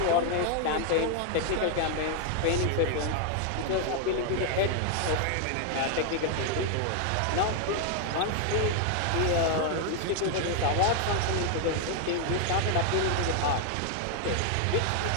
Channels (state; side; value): different; both; correlation 0.00